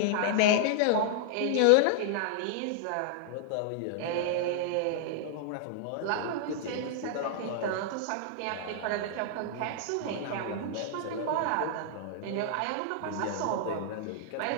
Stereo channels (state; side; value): different; both; correlation -0.01